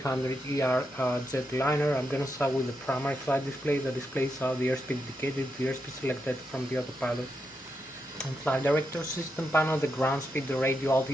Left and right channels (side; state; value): both; normal; correlation 0.84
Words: jetliner. I'm going to start with the primary flight display. The displays are the airspeed indicated, the airspeed selected from the autopilot and flight director system panel, the ground speed, the radio